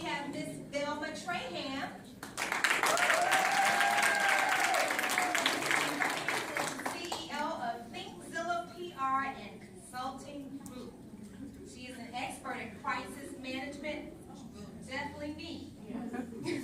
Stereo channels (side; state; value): both; identical; correlation 1.00